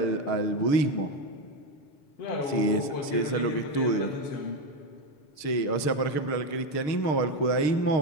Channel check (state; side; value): late; right; 6.5 ms